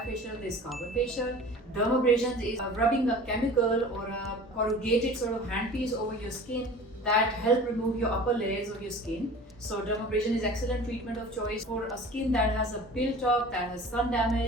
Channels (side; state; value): both; normal; correlation 0.41